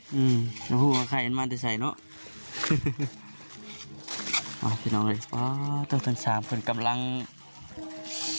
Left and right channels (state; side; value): inverted; both; correlation -1.00